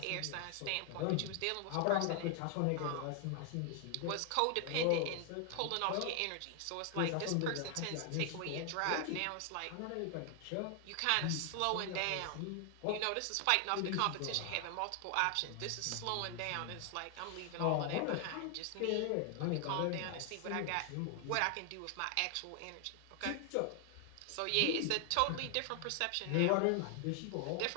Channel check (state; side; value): different; both; correlation 0.00